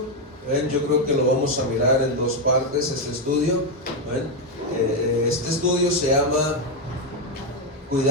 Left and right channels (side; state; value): both; normal; correlation 0.04